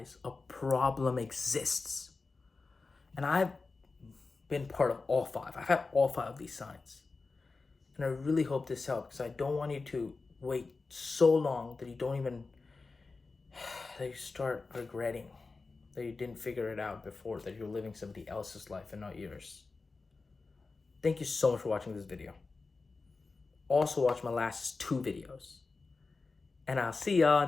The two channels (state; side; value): quieter; right; 4.0 dB